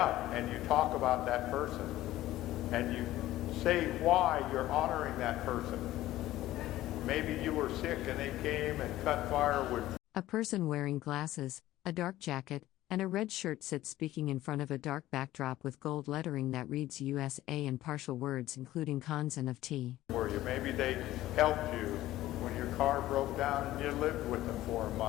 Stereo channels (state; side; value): quieter; right; 15.3 dB